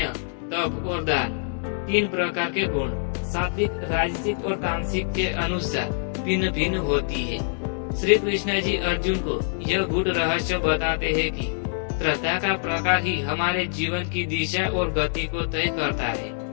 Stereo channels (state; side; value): silent; right; digital silence